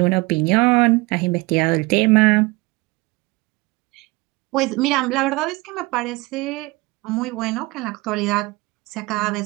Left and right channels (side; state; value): left; quieter; 23.4 dB